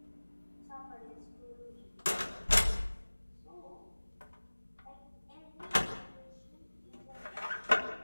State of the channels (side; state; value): both; inverted; correlation -1.00